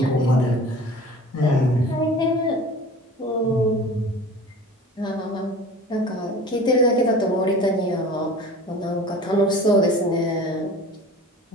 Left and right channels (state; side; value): normal; both; correlation 0.41